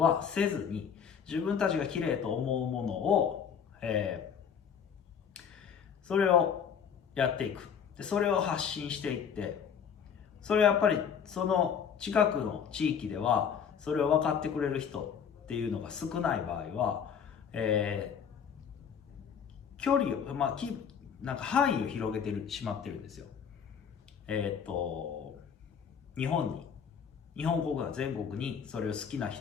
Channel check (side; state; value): right; quieter; 7.4 dB